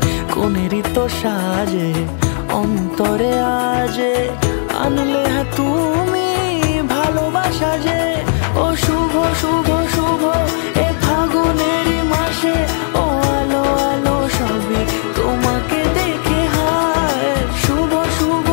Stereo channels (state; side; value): silent; right; 68 dB below the other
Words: কোনেরই তো সাজে অন্তরে আজে আনলে তুমি ভালোবাসা যে। ও শুভ শুভ